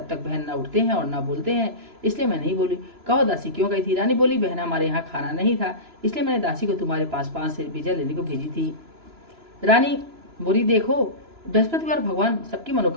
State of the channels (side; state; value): left; late; 3.0 ms